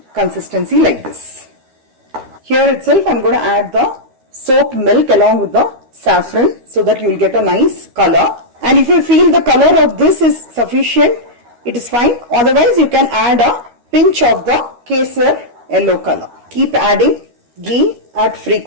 consistency like this. Here itself I'm going to add the soaked milk along with the saffron so that you will get a nice color. And if you feel the color of this is sufficient, it is fine. Otherwise you can add a pinch of the kesar yellow color. Keep adding ghee at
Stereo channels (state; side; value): late; left; 13 ms